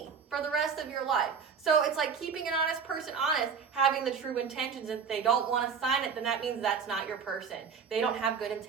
for the rest of your life. So it's like keeping an honest person honest, having the true intentions. If they don't want to sign it, then that means that's not your person. They don't have good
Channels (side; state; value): left; quieter; 6.2 dB